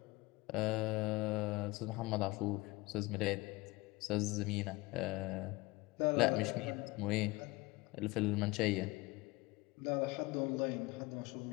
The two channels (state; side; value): quieter; right; 22.5 dB